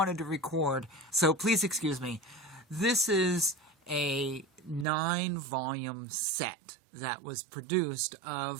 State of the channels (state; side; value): drops out; left; at 4.9 s